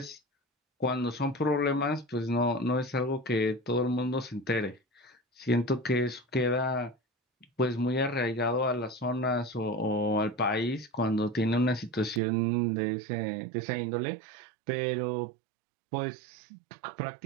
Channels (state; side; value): drops out; left; at 12.2 s